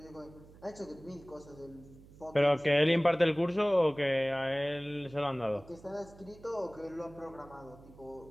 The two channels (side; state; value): right; noise; hum, 22 dB below the sound